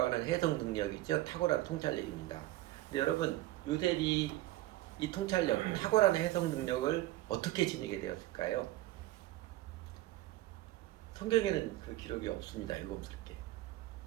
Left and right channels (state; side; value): quieter; left; 16.4 dB